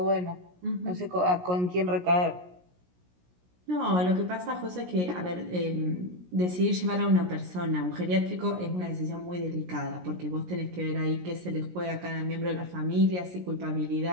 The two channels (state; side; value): late; left; 17 ms